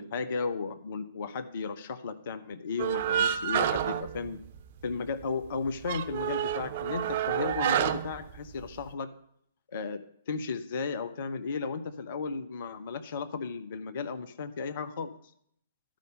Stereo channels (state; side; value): inverted; both; correlation -0.54